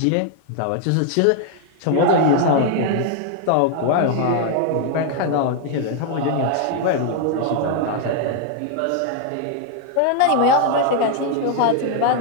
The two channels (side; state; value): both; different; correlation 0.00